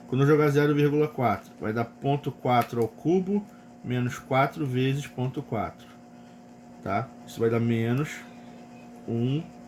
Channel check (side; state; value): both; identical; correlation 1.00